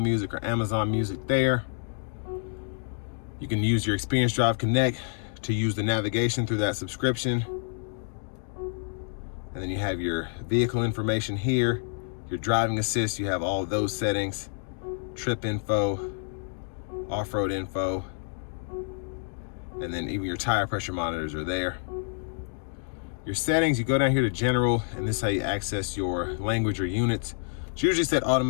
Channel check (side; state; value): right; silent; digital silence